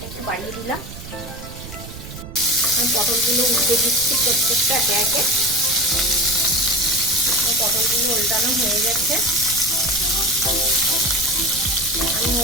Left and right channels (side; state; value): right; noise; rumble, 13 dB below the sound